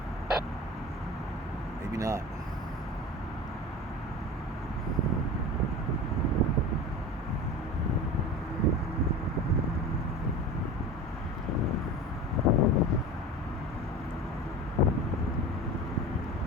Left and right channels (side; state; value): both; normal; correlation 0.33